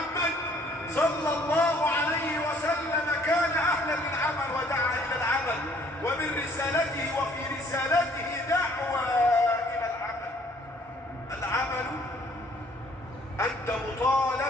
صلى الله عليه وسلم كان أهلا للعمل ودعا إلى العمل، ومن رسالته وفي رسالته دعوة إلى العمل. العمل أنت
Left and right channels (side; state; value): both; normal; correlation 0.60